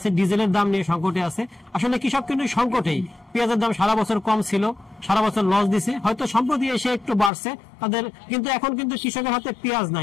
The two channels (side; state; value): right; drops out; at 7.3 s